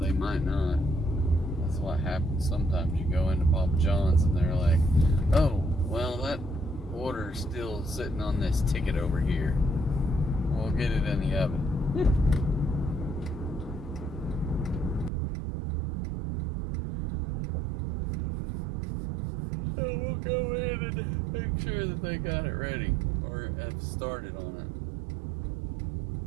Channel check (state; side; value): drops out; left; at 15.1 s